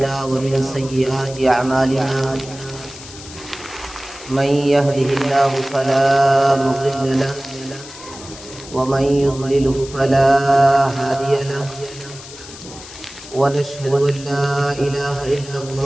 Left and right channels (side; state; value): left; noise; hiss, 16 dB below the sound